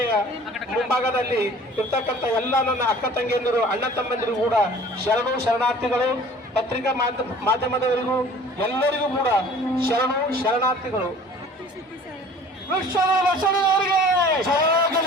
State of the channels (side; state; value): both; normal; correlation 0.48